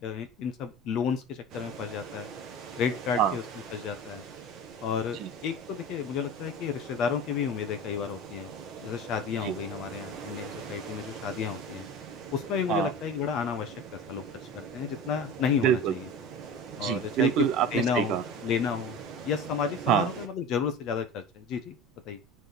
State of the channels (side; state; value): right; noise; rumble, 30 dB below the sound